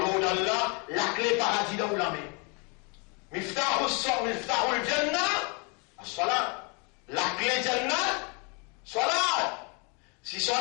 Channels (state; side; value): quieter; right; 32.9 dB